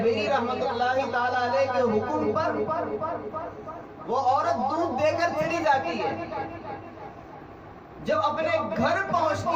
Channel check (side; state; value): both; identical; correlation 1.00